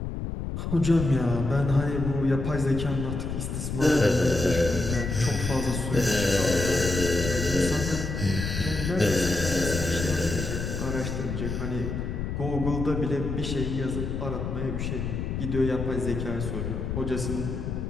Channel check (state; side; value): noise; left; rumble, 4 dB below the sound